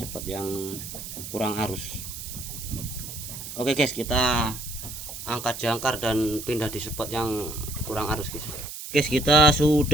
spot yang kurang arus. Oke guys, kita angkat jangkar dan pindah di spot yang kurang arus guys. Guys, kita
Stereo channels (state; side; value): noise; right; hiss, 9 dB below the sound